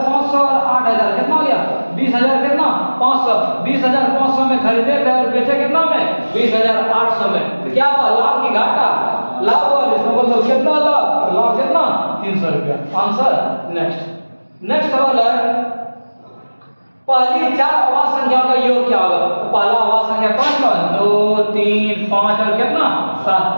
और 8,000 कितना हो गया 20,000 कितना 500 20,500 में खरीदे थे और बेचे कितना में 20,800 में। तो क्या हुआ लाभ की घाटा, लाभ हुआ, इसका मतलब कितना लाभ, लाभ कितना 300 रुपया। आंसर। नेक्स्ट सवाल है पहली 4 आवाज संख्याओं का योग क्या होगा। तो पहला आवाज संख्या कौन कौन 2 3 5 और कितना 7,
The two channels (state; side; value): inverted; both; correlation -1.00